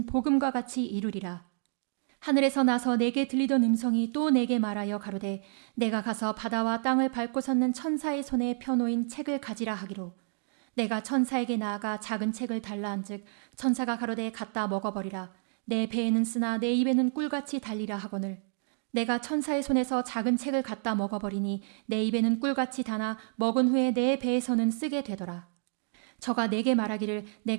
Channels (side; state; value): left; silent; digital silence